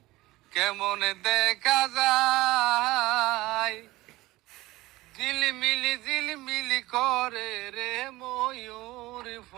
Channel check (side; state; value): left; quieter; 19.1 dB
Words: কেমন দেখা যায়, ঝিলমিলি ঝিলমিলি করে রে ময়ূর